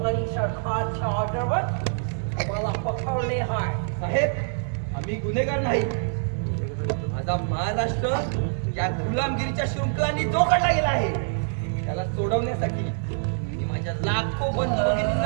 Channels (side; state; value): left; silent; digital silence